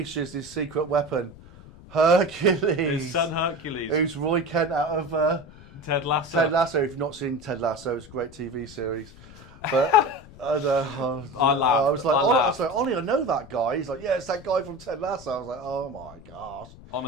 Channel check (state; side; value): noise; left; rumble, 20 dB below the sound